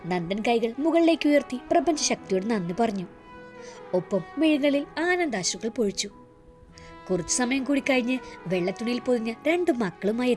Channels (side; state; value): both; identical; correlation 1.00